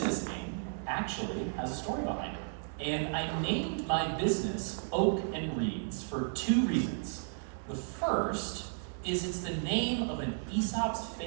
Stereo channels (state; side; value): silent; left; 55 dB below the other